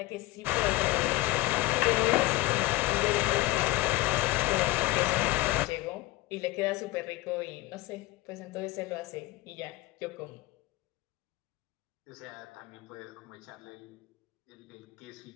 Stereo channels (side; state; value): right; quieter; 18.9 dB